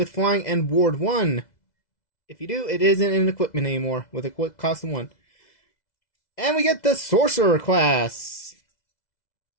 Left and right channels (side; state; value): right; late; 2.0 ms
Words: flying and ward 1. If you do, it isn't an equipment anymore, with a cost of 1. And we get the Sorcerer class.